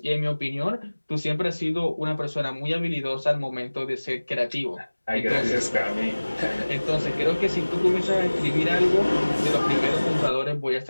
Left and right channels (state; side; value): inverted; both; correlation -1.00